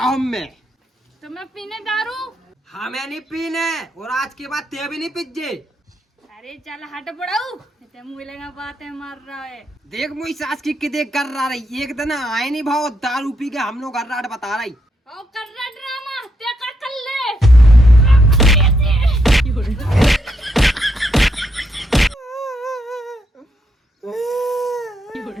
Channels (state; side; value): normal; both; correlation 0.78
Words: में तो मैं पीने दारू। हमें नहीं पीने और आज के बाद ते भी नहीं पीजे। अरे चल हट पड़ाऊ तो मुझे लगा बातें मार रहा है। देख मुझी सास की कितने कर रहा रही, एक दिन आए नहीं भाव दारू पी के हम लोग गर्राट बता रही। और कर रहा ड्रामा ते कर ले।